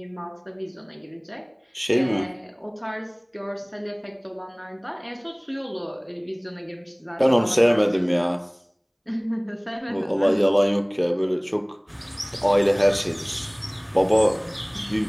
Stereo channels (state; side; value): identical; both; correlation 1.00